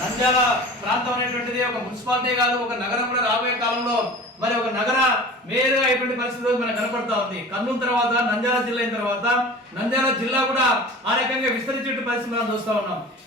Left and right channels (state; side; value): normal; both; correlation 0.39